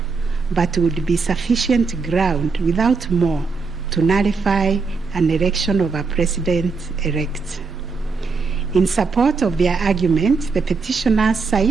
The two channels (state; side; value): quieter; left; 4.6 dB